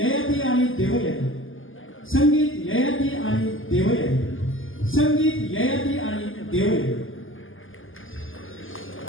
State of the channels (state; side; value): late; right; 0.58 ms